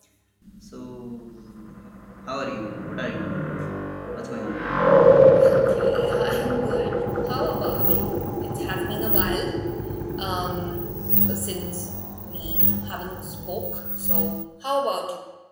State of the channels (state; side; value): identical; both; correlation 1.00